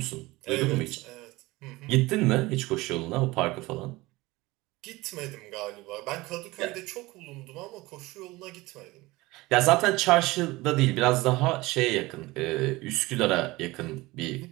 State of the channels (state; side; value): quieter; left; 20.8 dB